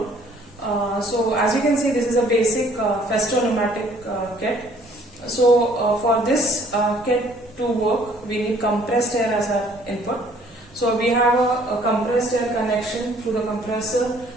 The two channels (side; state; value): both; normal; correlation 0.59